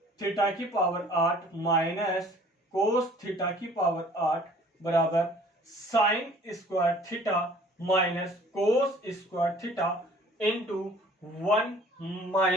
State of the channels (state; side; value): normal; both; correlation 0.52